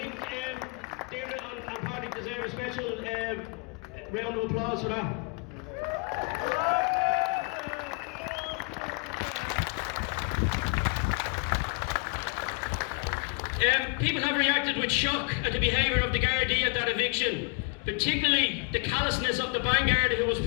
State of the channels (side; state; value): right; quieter; 34.9 dB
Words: Deirdre and Patrick deserve a special round of applause for that. People have reacted with shock at the behaviour of the Gardaí at that eviction, particularly the callousness of the vanguard who was